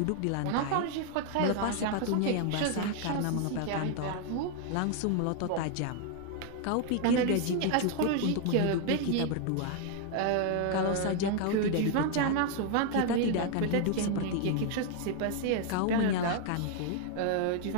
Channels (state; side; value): different; both; correlation 0.00